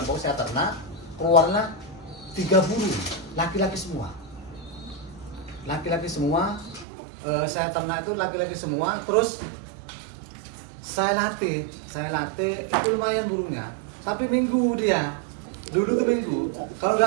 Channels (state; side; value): drops out; left; at 6.9 s